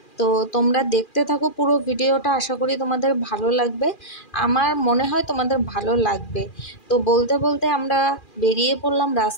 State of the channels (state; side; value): late; right; 2.4 ms